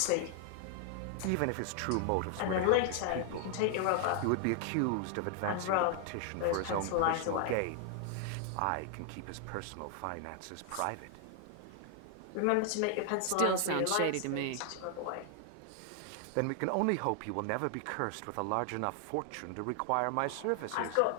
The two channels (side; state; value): both; different; correlation 0.00